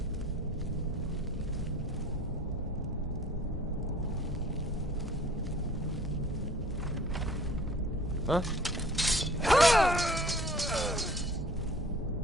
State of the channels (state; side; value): normal; both; correlation 0.50